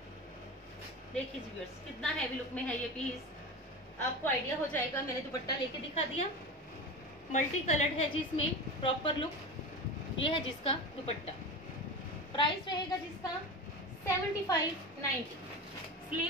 देखिए जी व्यूअर्स कितना हैवी लुक में है ये पीस, आपको आइडिया हो जाएगा। मैंने दुपट्टा लेके दिखा दिया, मल्टी कलर्ड है जी इसमें प्रॉपर लुक। ये है जिसका दुपट्टा, प्राइस रहेगा जिसका 75-90।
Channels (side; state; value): both; normal; correlation 0.27